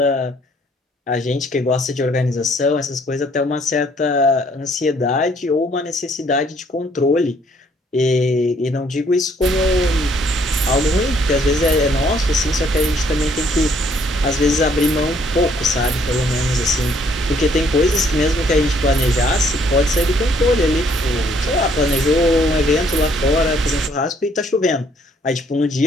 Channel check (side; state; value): both; normal; correlation 0.65